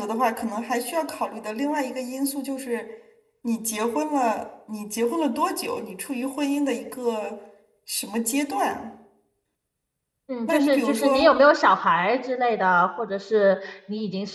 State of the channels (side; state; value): both; identical; correlation 1.00